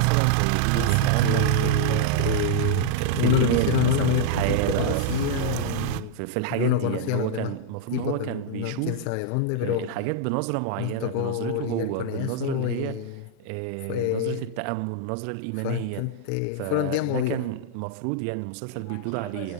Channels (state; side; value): different; both; correlation -0.01